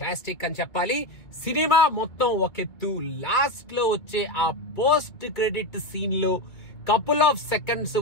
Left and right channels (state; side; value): late; right; 2.1 ms